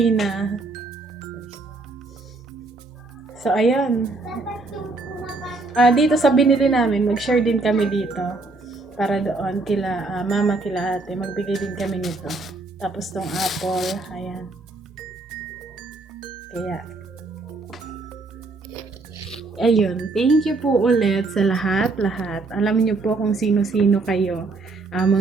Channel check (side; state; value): left; quieter; 3.5 dB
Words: na. So, ayan. Dito sa binili namin, mag-share din kami dito. Para doon, kila mama, kila ate, magbigay din kami nito. Tapos tong apple, ayan. Kaya, ayun, thank you po ulit sa lahat. Alam niyo po kung sino-sino kayo.